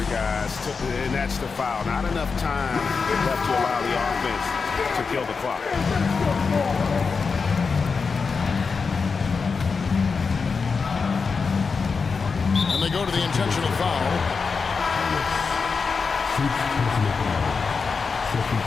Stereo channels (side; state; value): right; quieter; 5.0 dB